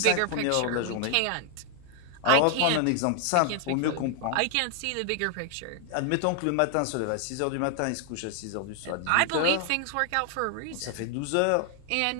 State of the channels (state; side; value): different; both; correlation 0.00